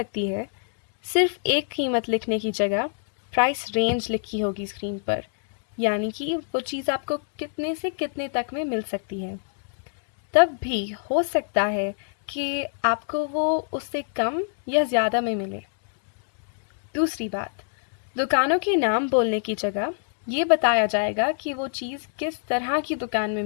है, सिर्फ एक कीमत लिखने की जगह प्राइस रेंज लिखी होगी स्क्रीन पर, यानी कि वो चीज़ आपको कितने से कितने तक में मिल सकती है। तब भी हो सकता है कि आपको वो उससे कम या ज़्यादा में मिले। दूसरी बात, दुकानों के नाम बोलने की जगह ये बताया जाएगा कि वो चीज़ किस तरह की दुकान में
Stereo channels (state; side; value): silent; right; digital silence